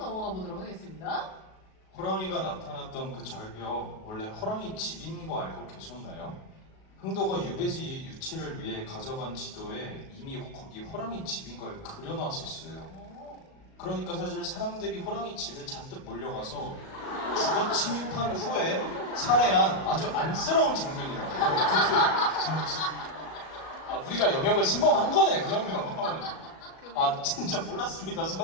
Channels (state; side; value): late; right; 37 ms